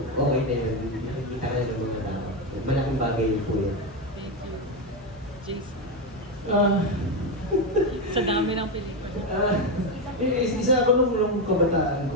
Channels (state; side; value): normal; both; correlation 0.10